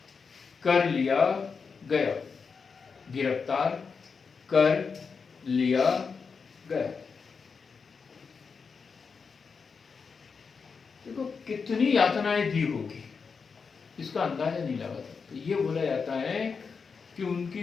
कर लिया गया। देखो कितनी यातनाएं दी होगी, इसका अंदाजा नहीं लगा सकते। ये बोला जाता है कि उनकी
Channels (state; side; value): quieter; right; 5.4 dB